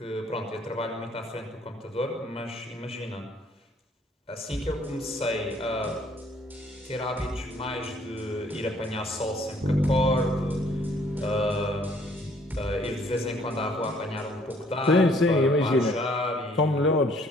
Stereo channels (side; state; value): both; normal; correlation 0.62